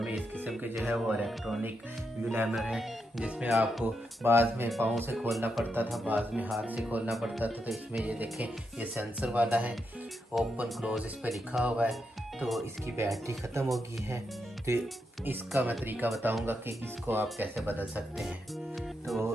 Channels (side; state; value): both; normal; correlation 0.83